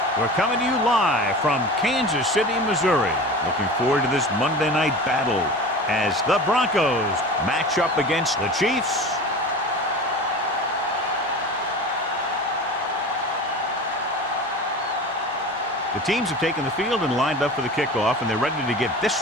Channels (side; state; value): both; normal; correlation 0.34